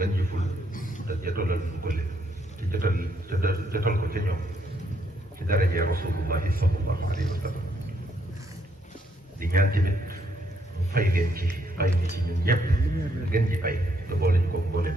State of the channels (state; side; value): normal; both; correlation 0.73